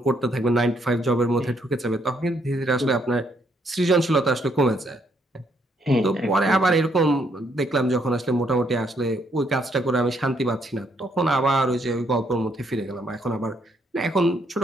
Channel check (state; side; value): normal; both; correlation 0.72